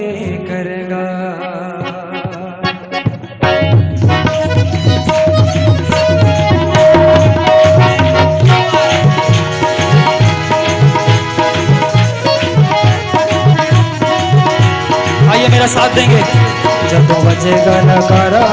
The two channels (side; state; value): both; identical; correlation 1.00